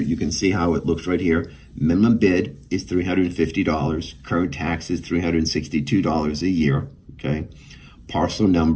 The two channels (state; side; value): identical; both; correlation 1.00